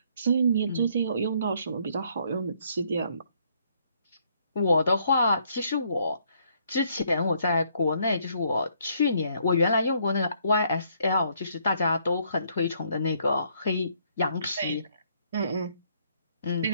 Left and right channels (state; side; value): inverted; both; correlation -0.68